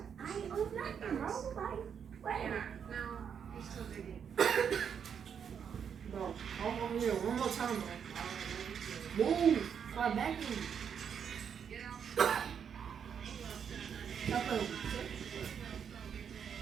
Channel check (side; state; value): left; quieter; 7.6 dB